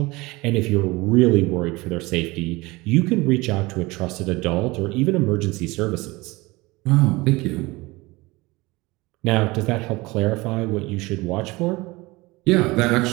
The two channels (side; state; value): left; quieter; 22.4 dB